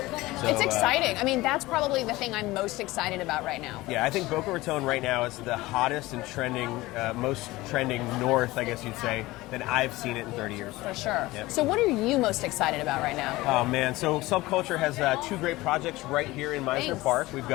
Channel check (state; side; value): quieter; right; 19.4 dB